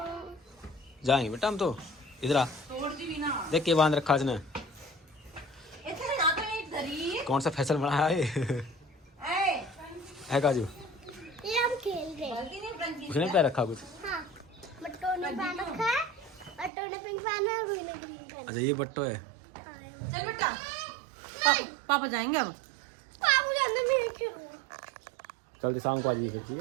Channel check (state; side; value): drops out; left; at 16.7 s